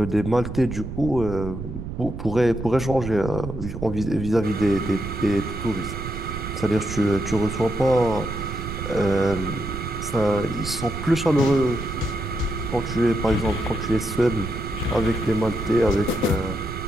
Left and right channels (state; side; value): noise; right; rumble, 8 dB below the sound